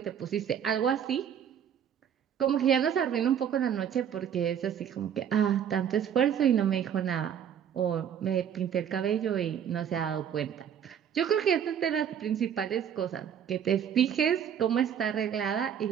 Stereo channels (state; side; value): quieter; left; 8.7 dB